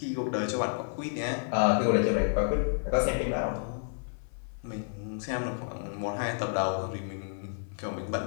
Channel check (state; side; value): silent; right; 56 dB below the other